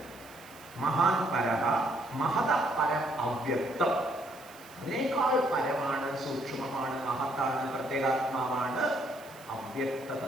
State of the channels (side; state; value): right; noise; hiss, 22 dB below the sound